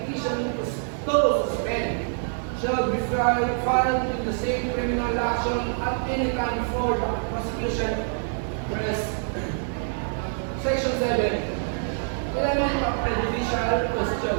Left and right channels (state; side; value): silent; left; digital silence